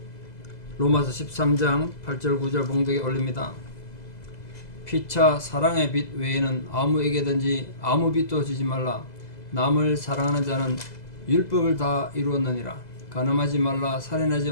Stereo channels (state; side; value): late; right; 2.0 ms